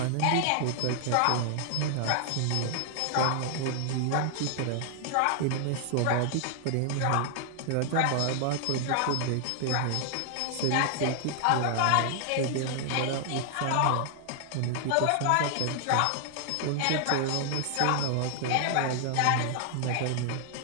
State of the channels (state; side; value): different; both; correlation 0.00